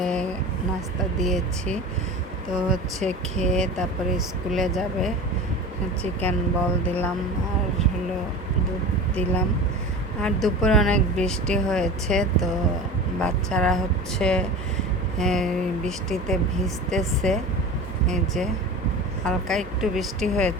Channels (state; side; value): normal; both; correlation 0.33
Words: নাস্তা দিয়েছি, তো হচ্ছে খেয়ে তারপরে স্কুলে যাবে। চিকেন বল দিলাম আর হলো দুধ দিলাম। আর দুপুরে অনেক বৃষ্টি হয়েছে, তো বাচ্চারা হচ্ছে বৃষ্টিতে ভিজতেছে। এই যে হালকা একটু বৃষ্টি